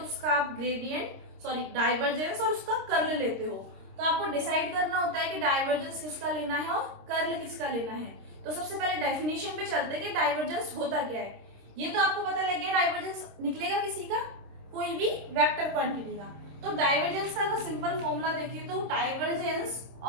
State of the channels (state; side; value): late; left; 26 ms